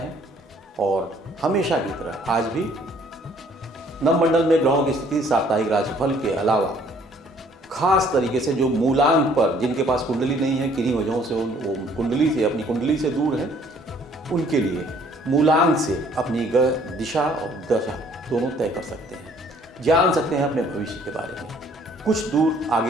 और हमेशा की तरह आज भी नवमंडल में ग्रहों की स्थिति, साप्ताहिक राशिफल के अलावा खास तरीके से जो मूलांक पर जिनके पास कुंडली नहीं है, किन्हीं वजहों से वो कुंडली से अपनी कुंडली से दूर है, उनके लिए मूलांक से अपनी दिशा और दशा दोनों तय कर सकते हैं, जान सकते हैं अपने भविष्य के बारे में, कुछ दूर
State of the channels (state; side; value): normal; both; correlation 0.60